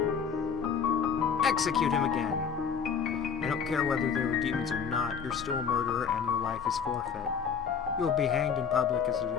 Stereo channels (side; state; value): right; quieter; 6.6 dB